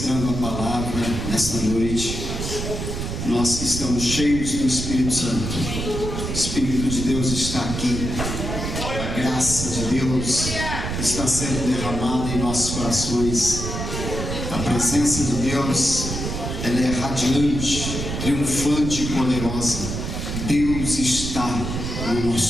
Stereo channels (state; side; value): noise; right; rumble, 4 dB below the sound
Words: a palavra nesta noite. Nós que estamos cheios do Espírito Santo, o Espírito de Deus está aqui, a graça de Deus está sendo derramada em nossos corações. A presença de Deus, ela é radiante, triunfante e poderosa. Deus está no